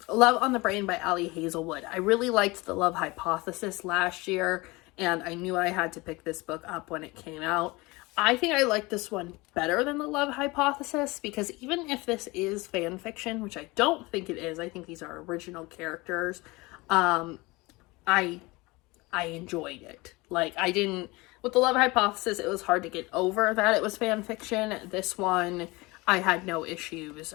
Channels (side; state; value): right; quieter; 23.3 dB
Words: on the Brain by Ali Hazelwood. I really liked The Love Hypothesis last year, and I knew I had to pick this book up when it came out. I think I like this one better than The Love Hypothesis because even if this is fan fiction, which I don't think it is, I think these are original characters, I enjoyed it. Like, I didn't, with The Love Hypothesis, it was hard to get over that it was fan fiction. This one, I had no issues.